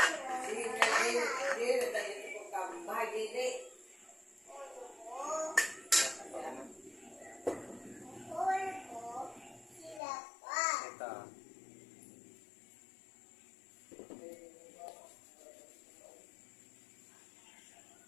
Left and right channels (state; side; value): drops out; right; at 10.0 s